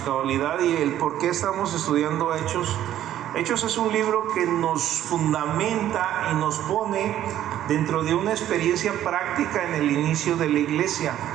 cabalidad y el por qué estamos estudiando Hechos. Hechos es un libro que nos fundamenta y nos pone dentro de una experiencia práctica en el inicio de la iglesia,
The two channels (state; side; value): quieter; left; 12.0 dB